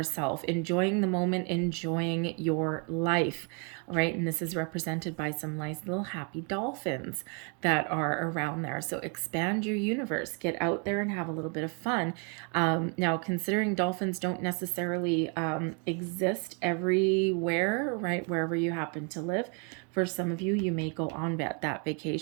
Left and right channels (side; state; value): left; quieter; 36.8 dB